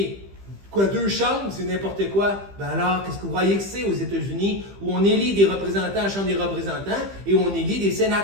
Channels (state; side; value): late; left; 15 ms